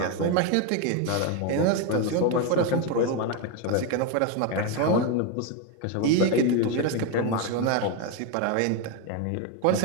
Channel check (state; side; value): different; both; correlation 0.02